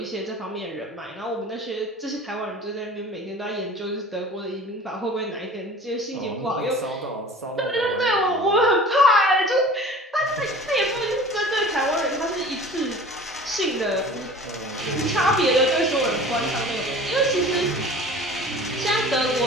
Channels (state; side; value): normal; both; correlation 0.43